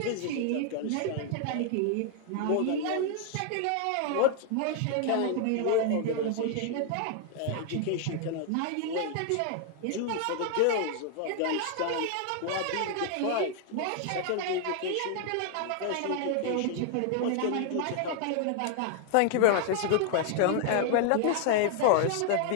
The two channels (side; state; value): both; different; correlation 0.00